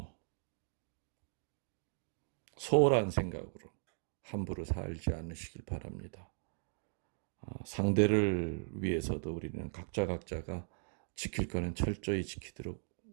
소홀한 생각으로 함부로 살지 않으시길 바랍니다. 상대를 위해서도 우리는 각자가 지킬 거는 철저히 지키도록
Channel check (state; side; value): silent; left; digital silence